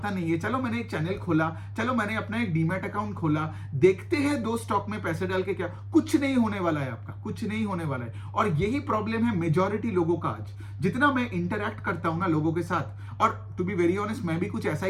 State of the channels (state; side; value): identical; both; correlation 1.00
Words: नहीं है, चलो मैंने एक चैनल खोला, चलो मैंने अपना एक डीमैट अकाउंट खोला, देखते हैं 2 स्टॉक में पैसे डाल के क्या, कुछ नहीं होने वाला है आपका, कुछ नहीं होने वाला है। और यही प्रॉब्लम है मेजॉरिटी लोगों का आज। जितना मैं इंटरैक्ट करता हूं ना लोगों के साथ, और टू बी वेरी ऑनेस्ट मैं भी कुछ ऐसा